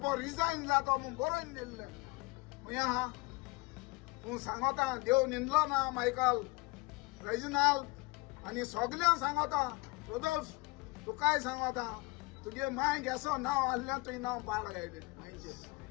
रिजायन जातो म्हूण बरोवन दिल्ले खंय आहा तूं सांगता देव निंदलो ना मायकल रेजिनाल्ड आनी सगळ्यांक सांगता रोदोल्फ तुकाय सांगता तुगे माय गेसो नांव आहल्यान तुवें नांव पाड गायलें मायचे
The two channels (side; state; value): right; quieter; 24.5 dB